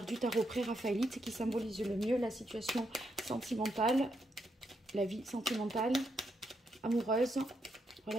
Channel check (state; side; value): normal; both; correlation 0.80